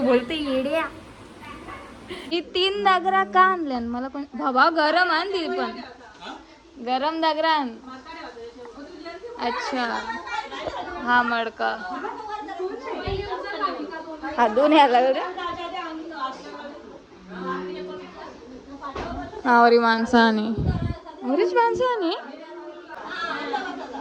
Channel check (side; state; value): both; identical; correlation 1.00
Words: बोलते येड्या. ही 3 दागरा का आणल्या मला पण? बाबा गरम आण ती पण, गरम दागरा आण. अच्छा हा मडका हा दोन याला आवरी माणसाने, आवरीच माणसाने.